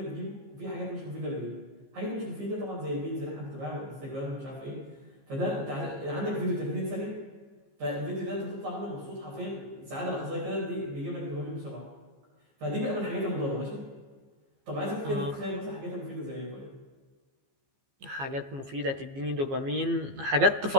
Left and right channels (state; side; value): late; left; 15 ms